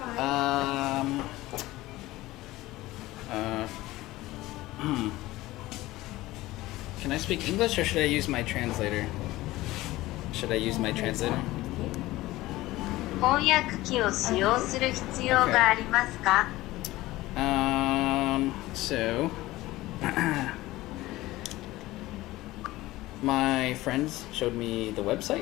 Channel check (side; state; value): right; quieter; 17.9 dB